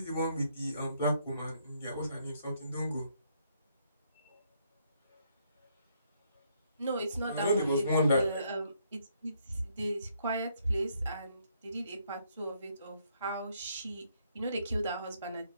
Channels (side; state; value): both; inverted; correlation -0.72